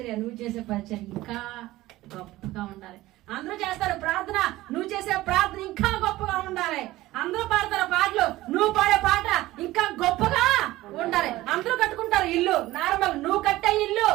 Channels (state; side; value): quieter; left; 17.2 dB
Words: నువ్వు చేసే పరిచర్య ఇంకా గొప్పగా ఉండాలి. అందరూ చేస్తారు ప్రార్థన, నువ్వు చేసే ప్రార్థన ఇంకా గొప్పగా ఉండాలి. అందరూ పాడతారు పాటలు, నువ్వు పాడే పాట ఇంకా గొప్పగా ఉండాలి. అందరూ కట్టుకుంటారు ఇల్లు నార్మల్, నువ్వు కట్టే ఇల్లు